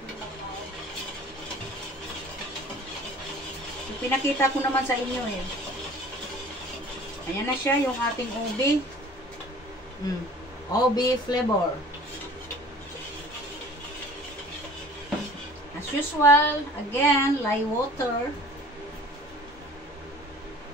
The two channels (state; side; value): normal; both; correlation 0.47